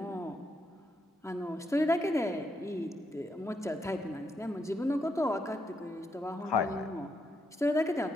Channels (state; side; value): normal; both; correlation 0.80